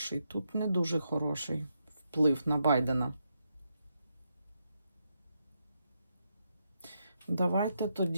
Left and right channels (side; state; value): both; inverted; correlation -0.82